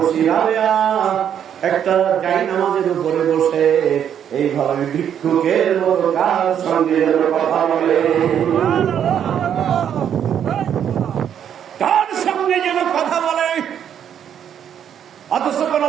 একটা জায়নামাজের উপরে বসে এইভাবে ভিক্ষুকের মতো কার সঙ্গে কথা বলে, কার সঙ্গে যেন কথা বলে। অথচ কোন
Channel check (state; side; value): quieter; left; 9.1 dB